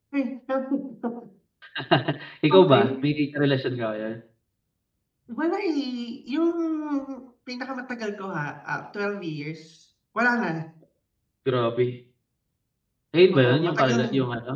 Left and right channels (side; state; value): both; identical; correlation 1.00